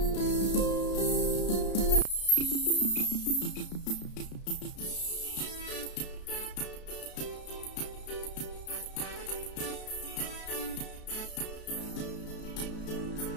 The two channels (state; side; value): late; right; 33 ms